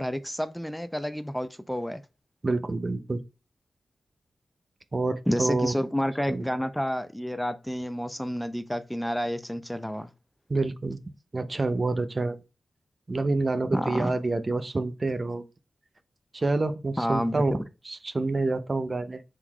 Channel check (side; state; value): both; normal; correlation 0.97